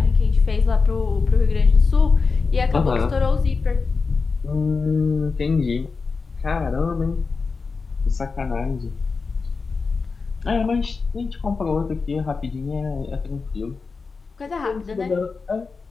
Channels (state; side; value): quieter; right; 4.6 dB